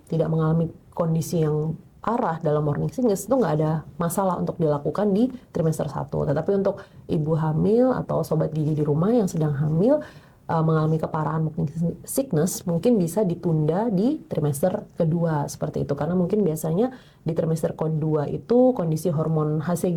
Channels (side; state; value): both; identical; correlation 1.00